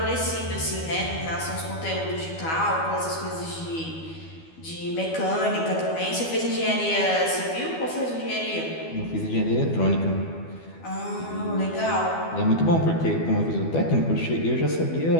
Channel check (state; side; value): late; right; 12 ms